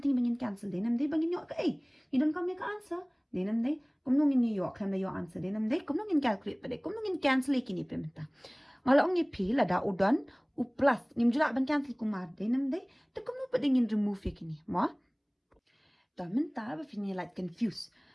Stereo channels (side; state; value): both; identical; correlation 1.00